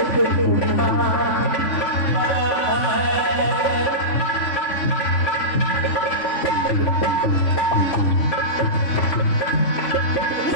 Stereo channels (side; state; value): right; late; 3.5 ms